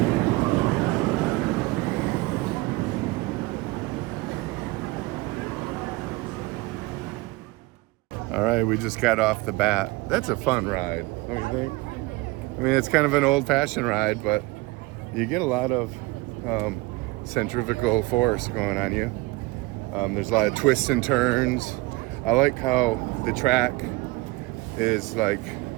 All right, we just got off the bat. That's a fun ride, don't you think? I mean, it's kind of an old-fashioned ride, but you get a lot of centrifugal force going on you. There's a lot of twists and turns. I like how the track is like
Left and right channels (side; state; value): left; quieter; 21.6 dB